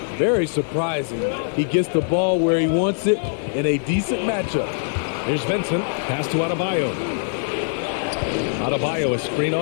Very surprising. He gets the ball where he wants it in a decent matchup. Here's Vincent. Pass to Adebayo. Adebayo, a screen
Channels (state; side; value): silent; right; 64 dB below the other